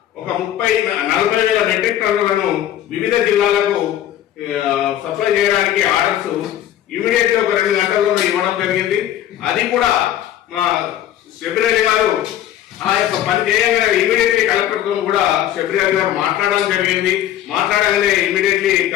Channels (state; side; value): quieter; right; 11.8 dB